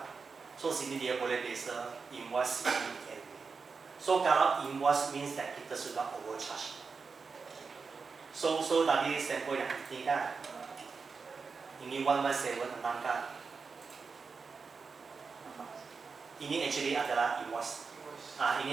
So sini dia boleh desa invoice CN. So kalau invoice means that kita sudah overcharge. So tadi sampel yang ini kan, ini 117 tentang kan. Ini actually adalah invoice.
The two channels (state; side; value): quieter; left; 5.0 dB